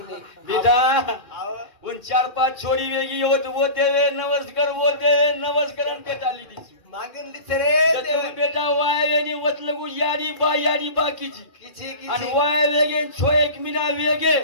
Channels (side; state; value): right; late; 2.4 ms